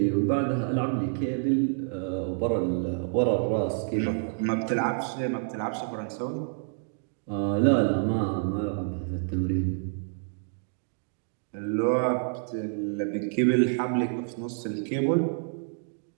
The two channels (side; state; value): left; silent; digital silence